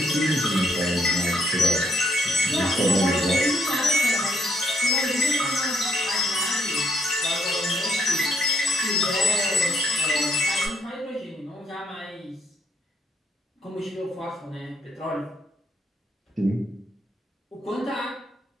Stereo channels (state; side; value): normal; both; correlation 0.73